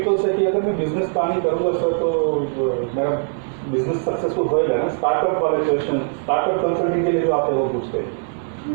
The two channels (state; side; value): silent; left; 58 dB below the other